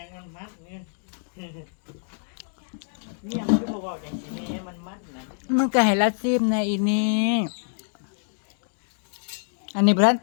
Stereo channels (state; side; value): silent; right; digital silence